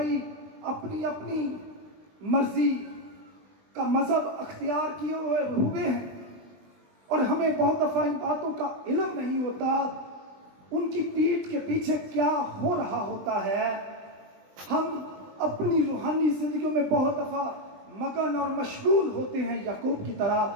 اپنی اپنی مرضی کا مذہب اختیار کیے ہوئے ہیں، اور ہمیں بہت دفعہ ان باتوں کا علم نہیں ہوتا، ان کی پیٹھ کے پیچھے کیا ہو رہا ہوتا ہے۔ ہم اپنی روحانی زندگیوں میں بہت دفعہ مگن اور مشغول ہوتے ہیں یعقوب کی طرح،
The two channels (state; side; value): late; left; 20 ms